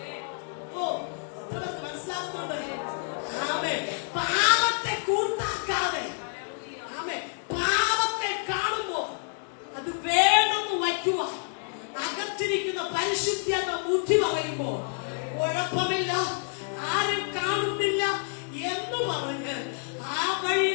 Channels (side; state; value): right; silent; 59 dB below the other